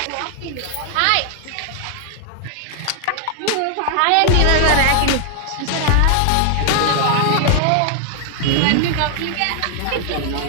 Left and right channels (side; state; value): both; different; correlation 0.00